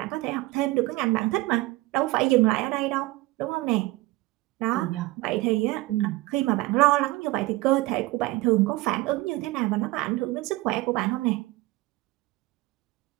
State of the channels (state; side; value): quieter; left; 19.8 dB